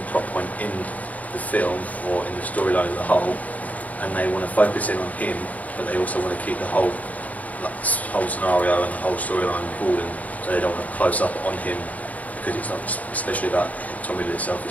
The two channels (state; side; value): late; right; 0.073 ms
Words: plot point in the film or in the storyline as a whole, and they want to focus in on him, but they also want to keep the whole scenario and the whole storyline broadened, so they don't want to close up on him because it's not especially about Tom Riddle itself,